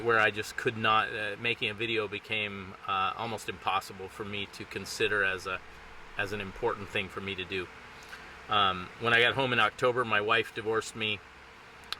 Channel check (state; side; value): identical; both; correlation 1.00